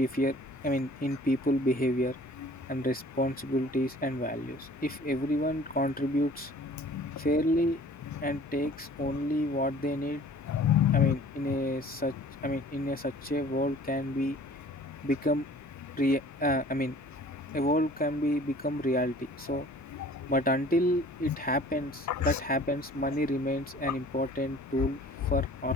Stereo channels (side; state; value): both; normal; correlation 0.49